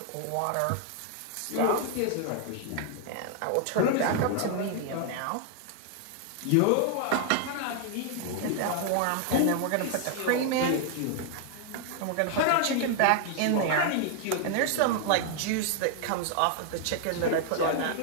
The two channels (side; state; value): both; different; correlation 0.00